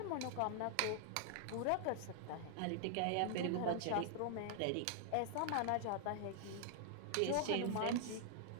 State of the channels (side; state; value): both; different; correlation 0.00